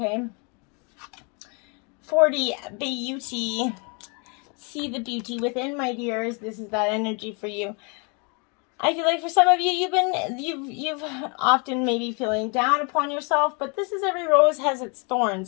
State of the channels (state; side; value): quieter; right; 33.8 dB